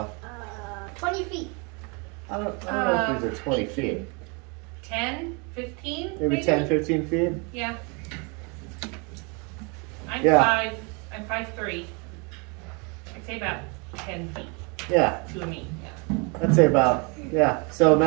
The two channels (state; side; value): quieter; left; 32.3 dB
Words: 20 feet. I don't know if these are 20 feet. 10, 15? Maybe 10, 15 feet? Yeah. I'm Yeah. I'm 5'3". I'd say about 10 feet Yeah, to me. Yeah. I'd say about, yeah. So